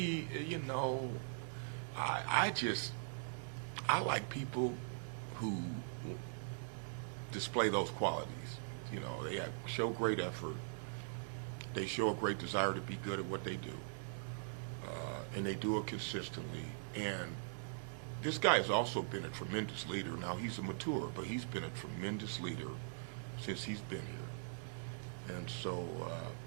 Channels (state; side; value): silent; left; 50 dB below the other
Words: you know, I like people who display those qualities. You know, they show great effort. They show a great desire to be good at what they do. And they do it consistently. And this guy has also been a tremendous leader. Now, he's a mature, but he's been a tremendous leader since he's been here. And so